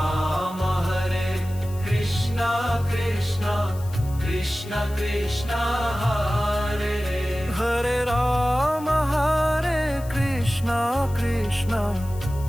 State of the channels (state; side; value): noise; left; hiss, 20 dB below the sound